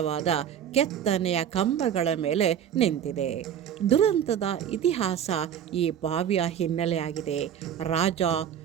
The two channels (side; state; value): left; quieter; 9.3 dB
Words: ಕೆತ್ತನೆಯ ಕಂಬಗಳ ಮೇಲೆ ನಿಂತಿದೆ. ದುರಂತದ ಇತಿಹಾಸ ಈ ಬಾವಿಯ ಹಿನ್ನೆಲೆಯಾಗಿದೆ. ರಾಜ